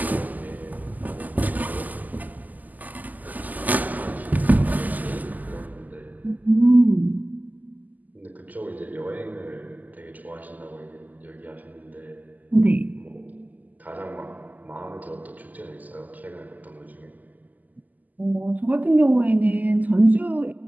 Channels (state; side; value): late; left; 0.082 ms